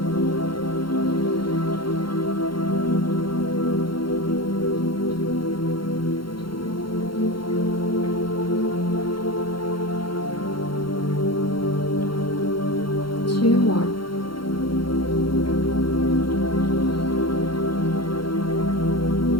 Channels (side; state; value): right; late; 0.73 ms